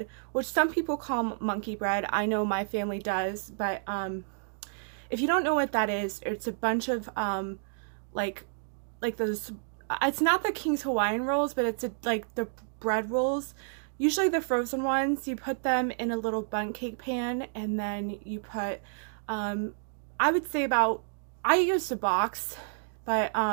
which some people call monkey bread. I know my family does, but if you don't know what that is, it's a bunch of like those. It's not the King's Hawaiian rolls, but it's like the bread rolls. Usually the frozen ones, you put them in a little bundt cake pan, and then you put, I would say I used a box, but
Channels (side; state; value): left; silent; digital silence